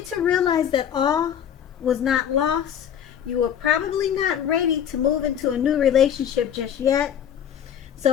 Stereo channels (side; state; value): right; quieter; 9.1 dB